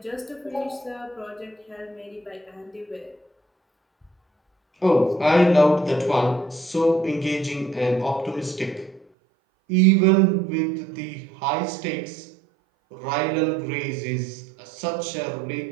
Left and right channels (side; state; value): left; drops out; at 9.1 s